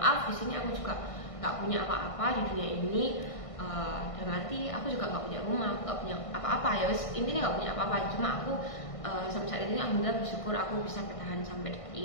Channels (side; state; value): right; late; 1.5 ms